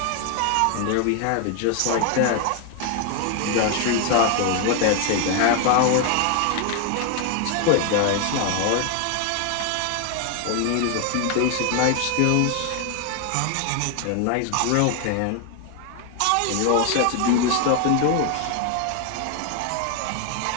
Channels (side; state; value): both; different; correlation 0.01